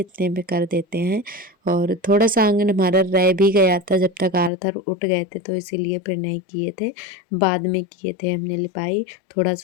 में कर देते हैं। और थोड़ा सा आंगन हमारा रह भी गया था, जब तक आर्थर उठ गए थे तो इसीलिए फिर नहीं किए थे, बाद में किए थे हमने लिपाई, थोड़ा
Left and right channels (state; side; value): drops out; right; at 4.5 s